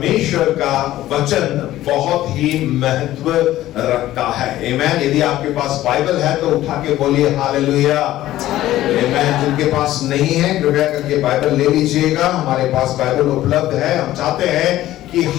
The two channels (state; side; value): quieter; right; 14.6 dB